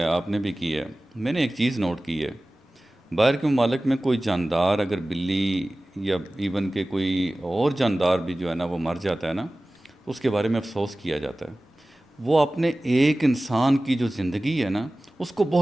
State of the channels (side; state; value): both; normal; correlation 0.97